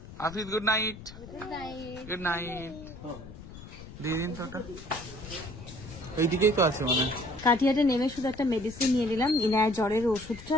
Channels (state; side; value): noise; left; rumble, 15 dB below the sound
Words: Afrid, good night. Good night. দিয়ে দিন টাটা। এইদিকেই তো আছে মনে হয়। কাটিয়াটা নেমে শুধু একটা মেডিসিন নিয়ে নিলাম, ইনায়ের জ্বরের ওষুধটা